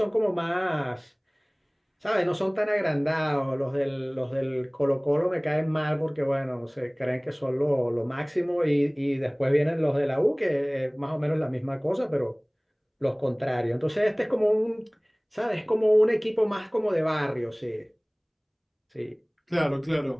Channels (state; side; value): identical; both; correlation 1.00